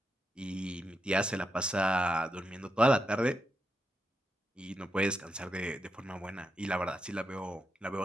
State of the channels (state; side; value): normal; both; correlation 0.85